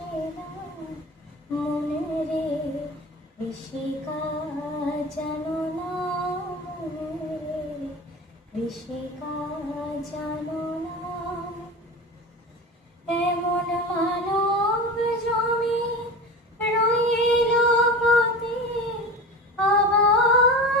না। মনে রে ঋষিকা জানো না, মনে রে ঋষিকা জানো না। এমন মানব জমি রইল পথে,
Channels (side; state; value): both; normal; correlation 0.30